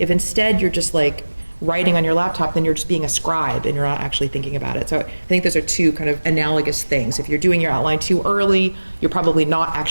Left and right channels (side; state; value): both; inverted; correlation -1.00